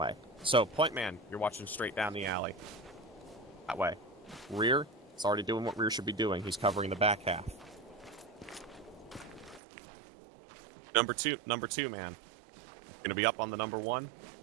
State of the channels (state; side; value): drops out; left; at 9.6 s